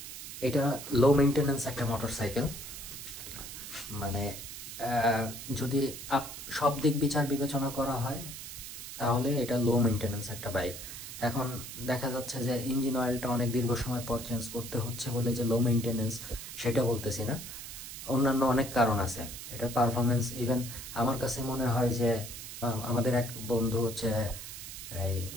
এটা লো মেনটেন্যান্স একটা মোটরসাইকেল, মানে যদি সব দিক বিচার বিবেচনা করা হয় তাহলে এটা লো মেনটেন্যান্স একটা বাইক। এখন দেখা যাচ্ছে যে ইঞ্জিন অয়েলটা অনেক দীর্ঘ সময় পর চেঞ্জ করতে হচ্ছে বলে যে লো মেনটেন্যান্স, সেটা বলতেছি না। অন্যান্য অনেক কারণ আছে এটার পারফরমেন্স। ইভেন আমার কাছে মনে হয় যে আমাদের এক বন্ধু হচ্ছে এই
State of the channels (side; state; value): right; noise; hiss, 10 dB below the sound